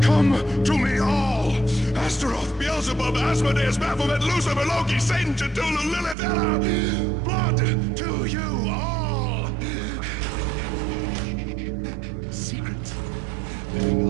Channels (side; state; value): left; drops out; at 6.2 s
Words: Come to me all! Astaroth, Beelzebub, Asmodeus, Baphomet, Lucifer, Loki, Satan, Cthulhu, Lilith, Ella! Blood to you all! Secret. Living